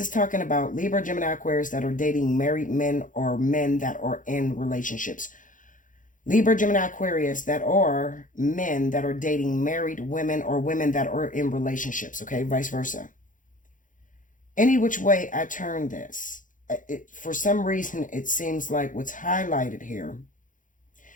is talking about Libra, Gemini, Aquarius that are dating married men or men that are in relationships. Libra, Gemini, Aquarius that are men that are dating married women or women that are in relationships. Okay, vice versa. Any which way I turn this, for some reason, it seems like what's highlighted here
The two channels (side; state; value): right; late; 0.38 ms